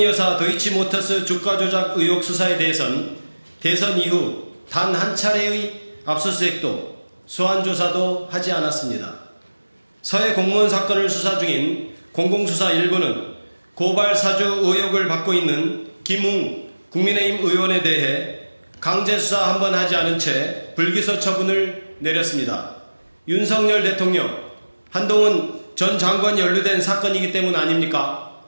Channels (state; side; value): inverted; both; correlation -1.00